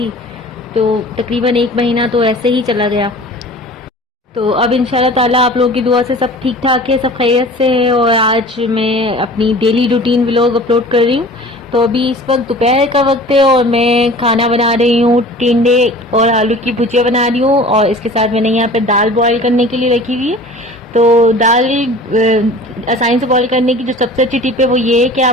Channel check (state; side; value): normal; both; correlation 0.43